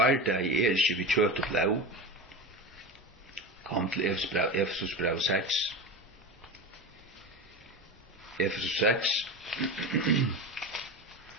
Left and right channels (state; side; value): normal; both; correlation 0.25